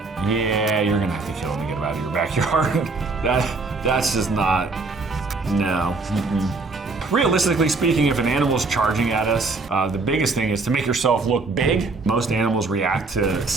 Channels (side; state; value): left; quieter; 3.8 dB